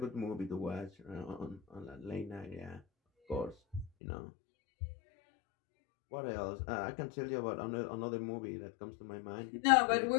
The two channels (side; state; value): right; drops out; at 3.9 s